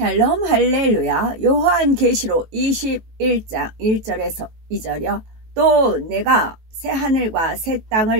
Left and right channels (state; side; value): late; left; 18 ms